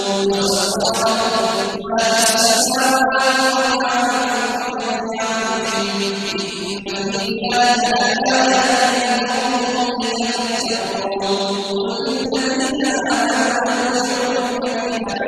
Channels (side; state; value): both; identical; correlation 1.00